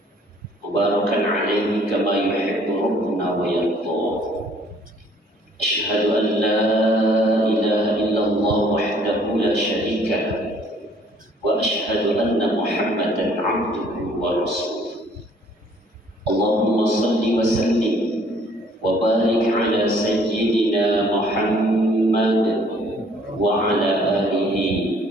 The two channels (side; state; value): both; normal; correlation 0.59